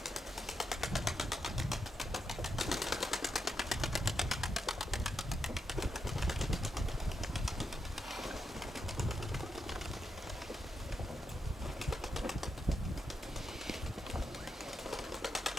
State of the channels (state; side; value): normal; both; correlation 0.84